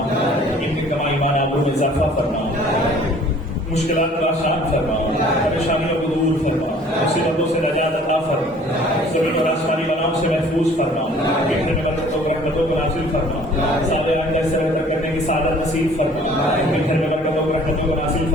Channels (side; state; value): both; normal; correlation 0.53